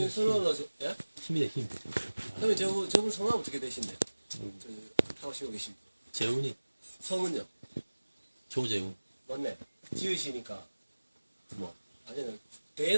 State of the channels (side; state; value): both; inverted; correlation -1.00